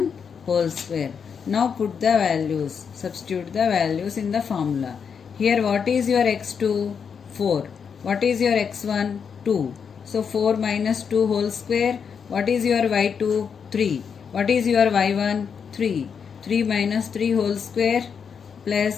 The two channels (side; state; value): right; quieter; 6.6 dB